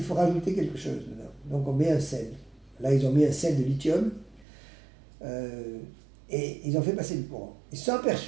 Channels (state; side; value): drops out; left; at 4.5 s